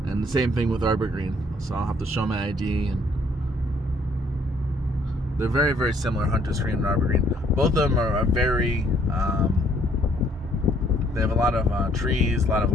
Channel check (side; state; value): both; normal; correlation 0.64